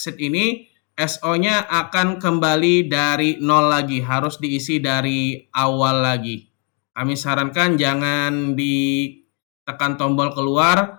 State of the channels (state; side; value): quieter; right; 36.8 dB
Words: ini, SO-nya akan kembali dari 0 lagi, harus diisi dari awal lagi. Kami sarankan jangan ditekan tombol